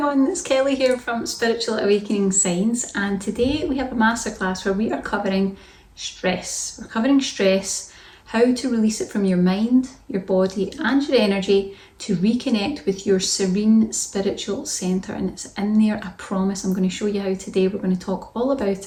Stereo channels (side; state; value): both; identical; correlation 1.00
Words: it's Kelly here from Spiritual Awakening Signs, and today we have a masterclass where we are covering stress. We're covering stress, how to release it from your mind, your body and your energy to reconnect with your serene spiritual centre, and it's in there, I promise. I'm going to show you how today. We're going to talk all